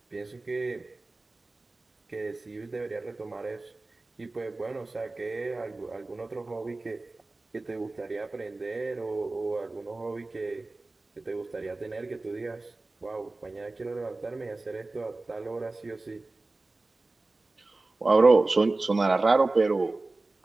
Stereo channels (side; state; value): left; quieter; 3.2 dB